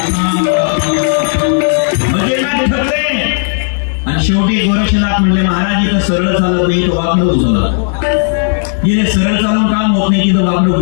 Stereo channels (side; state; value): right; silent; 65 dB below the other